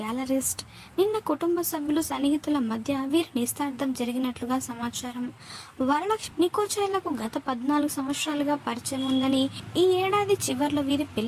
గ్యాలరిస్ట్. నిన్న కుటుంబ సభ్యులు సన్నిహితుల మధ్య వీరి నిశ్చితార్థం జరిగినట్లుగా సమాచారం. వరలక్ష్మి నికోచైలకు గత 14 సంవత్సరాలుగా పరిచయం ఉందని, ఈ ఏడాది చివర్లో వీరి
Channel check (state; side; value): identical; both; correlation 1.00